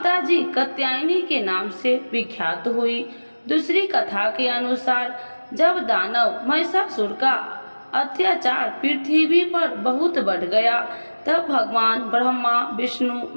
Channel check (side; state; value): both; inverted; correlation -1.00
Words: जी कात्यायनी के नाम से विख्यात हुई। दूसरी कथा के अनुसार जब दानव महिषासुर का अत्याचार पृथ्वी पर बहुत बढ़ गया, तब भगवान ब्रह्मा, विष्णु,